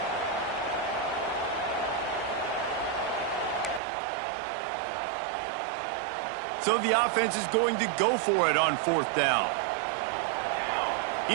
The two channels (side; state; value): left; drops out; at 3.8 s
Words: So the offense is going to go for it on 4th down. He